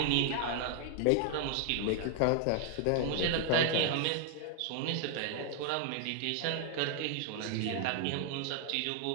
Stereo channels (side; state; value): both; different; correlation 0.00